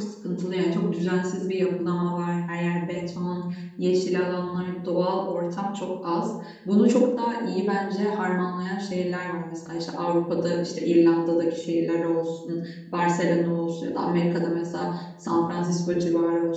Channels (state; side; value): identical; both; correlation 1.00